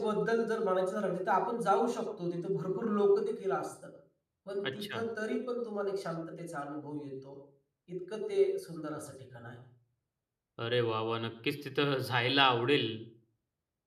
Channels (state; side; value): identical; both; correlation 1.00